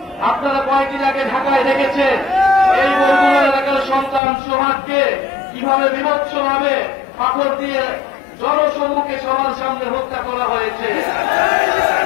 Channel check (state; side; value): drops out; right; at 4.2 s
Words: আপনারা কয়েকদিন আগে ঢাকায় দেখেছেন এই বরগুনা এলাকার সন্তান সোহাগকে কিভাবে বিভৎসভাবে পাথর দিয়ে জনসম্মুখে সবার সামনে হত্যা করা হয়েছে।